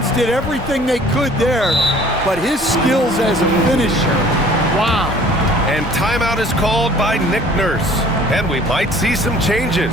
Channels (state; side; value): normal; both; correlation 0.52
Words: did everything they could there, but his skills as a finisher, wow. And timeout is called by Nick Nurse. And we might see some changes.